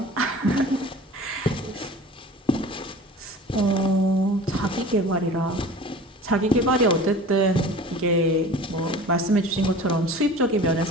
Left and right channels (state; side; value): normal; both; correlation 0.40